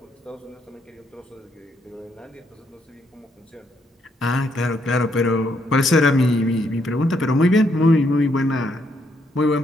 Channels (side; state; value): both; normal; correlation 0.74